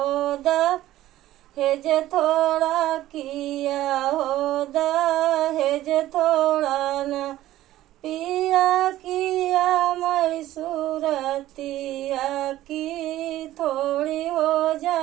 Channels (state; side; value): quieter; left; 14.7 dB